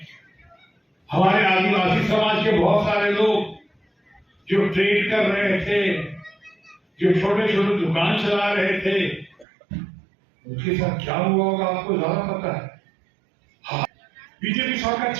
हमारे आदिवासी समाज के बहुत सारे लोग जो ट्रेड कर रहे थे, जो छोटे छोटे दुकान चला रहे थे, उनके साथ क्या हुआ होगा आपको ज्यादा पता है। हाँ, बीजेपी सरकार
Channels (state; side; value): drops out; left; at 9.5 s